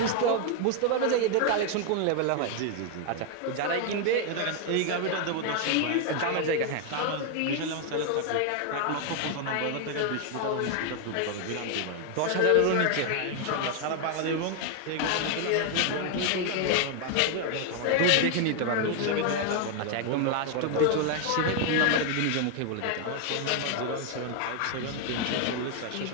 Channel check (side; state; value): both; different; correlation 0.01